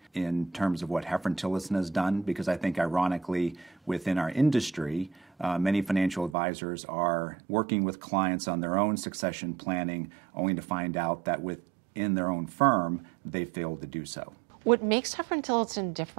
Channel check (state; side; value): drops out; left; at 6.4 s